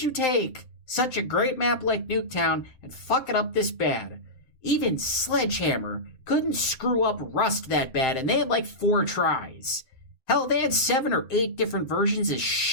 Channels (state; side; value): late; right; 7.7 ms